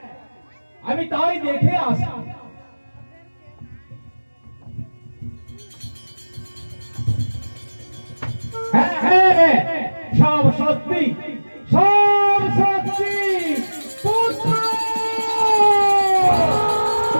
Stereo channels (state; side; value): inverted; both; correlation -1.00